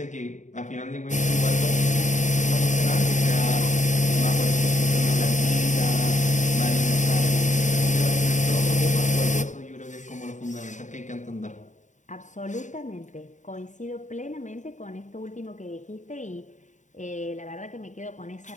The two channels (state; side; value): late; right; 0.36 ms